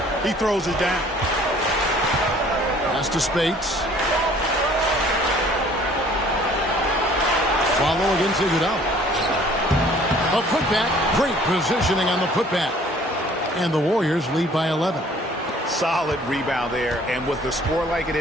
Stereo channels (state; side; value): normal; both; correlation 0.55